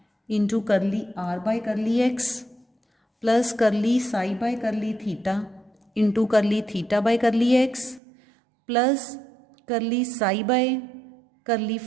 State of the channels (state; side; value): drops out; left; at 8.0 s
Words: into curly r by curly x plus curly psi by curly theta into curly theta by curly x plus curly psi by curly